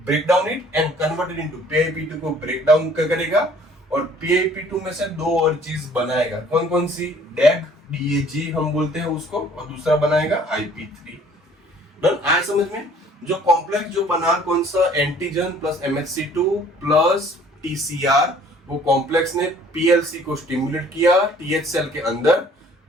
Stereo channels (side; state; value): both; normal; correlation 0.56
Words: break down it and convert it into PIP2 को ब्रेक डाउन करेगा, और PIP2 में से दो और चीज बनाएगा। कौन कौन सी? DAG DAG हम बोलते हैं उसको, और दूसरा बनाएगा IP3। डन, आया समझ में? जो कॉम्प्लेक्स जो बना कौन सा, antigen plus MHC2 plus TCR, वो कॉम्प्लेक्स ने PLC को स्टिमुलेट किया TH सेल के अंदर।